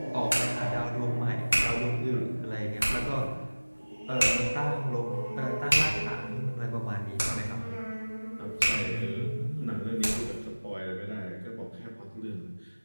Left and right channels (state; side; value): inverted; both; correlation -1.00